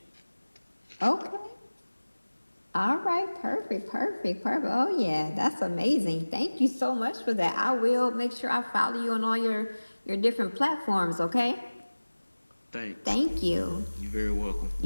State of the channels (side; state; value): both; inverted; correlation -1.00